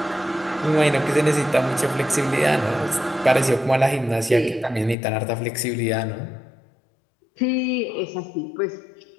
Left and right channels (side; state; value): right; drops out; at 5.0 s